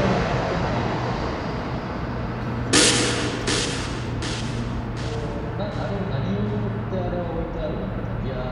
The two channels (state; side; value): identical; both; correlation 1.00